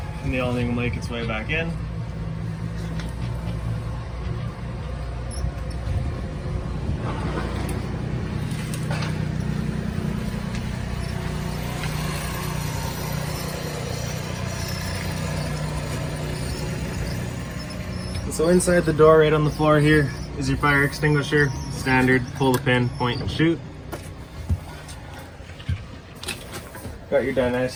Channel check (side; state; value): both; identical; correlation 1.00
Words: and the awning will make its way back in. So inside the door, right on the floor here, is your fire extinguisher. Standard, pull the pin, point and shoot. Got your dinette